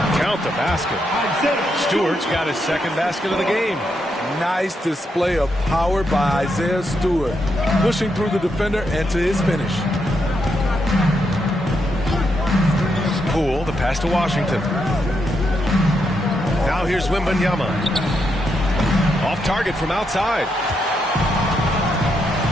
Count the basket. Stewart's got his 2nd basket of the game. Nice display of power by Isaiah Stewart, pushing through the defender and to his finish. Poole, the pass to Washington. Now here's Wembanyama. Off target from outside.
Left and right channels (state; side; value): normal; both; correlation 0.81